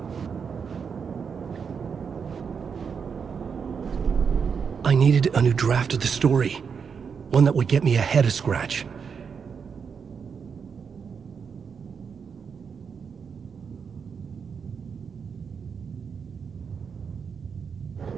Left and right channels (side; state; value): left; quieter; 6.3 dB